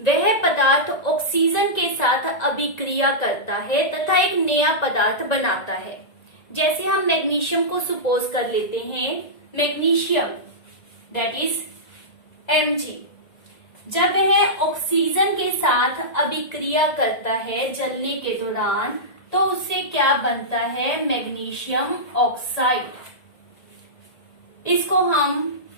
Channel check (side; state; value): right; late; 1.9 ms